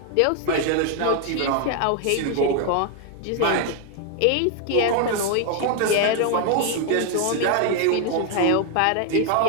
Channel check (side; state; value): both; different; correlation 0.00